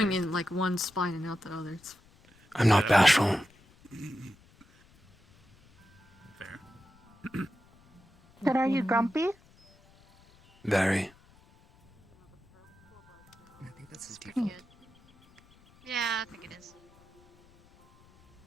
in like one spine and out the other. It's I'm not bashful. Fair. But are you grumpy? Very. I think that's his Pretty default. good. Yeah, I think it is.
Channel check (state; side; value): noise; left; rumble, 29 dB below the sound